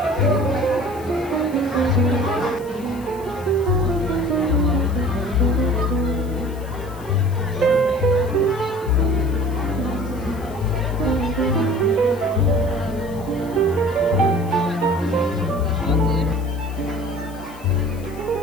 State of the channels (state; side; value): noise; left; hiss, 23 dB below the sound